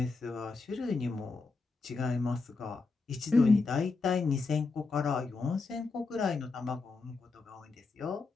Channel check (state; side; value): quieter; right; 4.0 dB